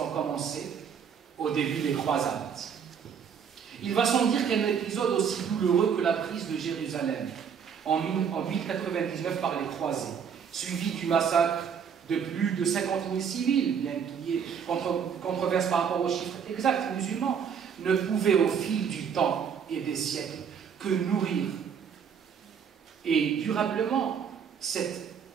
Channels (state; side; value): quieter; left; 7.2 dB